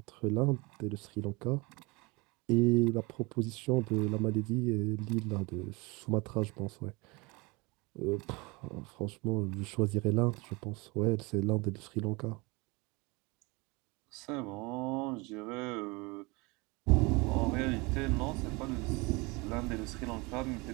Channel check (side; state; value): left; quieter; 26.1 dB